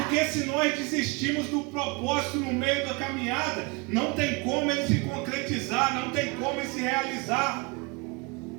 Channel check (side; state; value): left; quieter; 27.9 dB